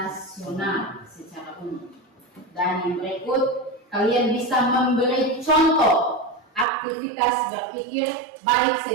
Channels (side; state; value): left; drops out; at 6.7 s